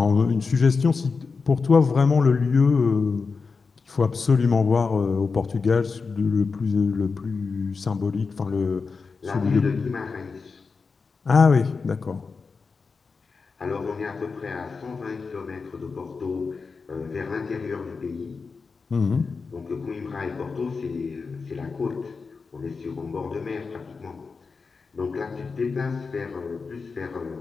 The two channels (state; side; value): quieter; right; 4.7 dB